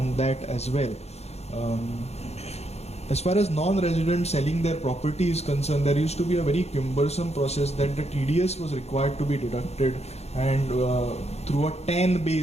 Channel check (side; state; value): right; late; 0.31 ms